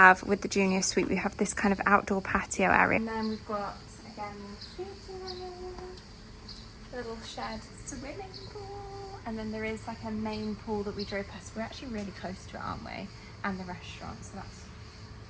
with the junior suite, we have this kind of outdoor patio area. And then we've got, again, little shared swimming pool. And then there is like a main pool that we drove past. We're actually really close to it, aren't we? And the restaurant, so that's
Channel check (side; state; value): both; identical; correlation 1.00